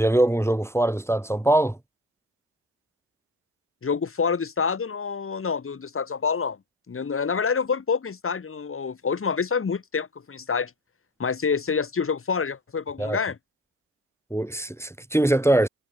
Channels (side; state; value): both; normal; correlation 0.39